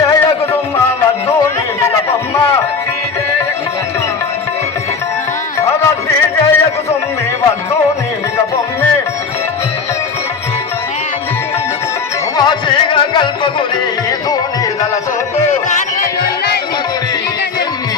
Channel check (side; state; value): right; quieter; 5.1 dB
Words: కల్పగురి ధోని దళ సోపు